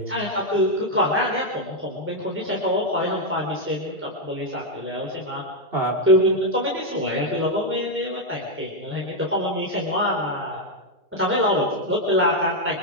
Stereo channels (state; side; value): normal; both; correlation 0.01